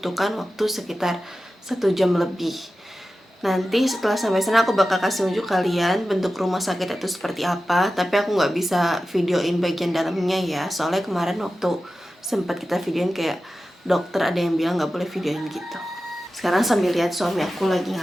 waktu sekitar 1 jam lebih. Nanti setelah sampai sana aku bakal kasih unjuk kalian bentuk rumah sakit itu seperti apa. Tapi aku nggak bisa videoin bagian dalamnya ya, soalnya kemarin waktu sempat kita videoin kayak dokter ada yang bilang nggak boleh videoin gitu. Sekarang sambil lihat suami aku lagi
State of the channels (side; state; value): both; normal; correlation 0.94